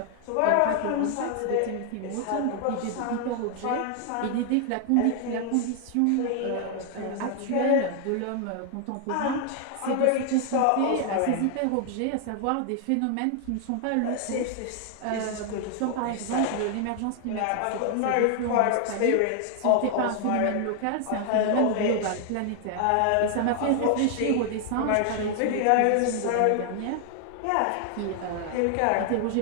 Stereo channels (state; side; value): different; both; correlation 0.00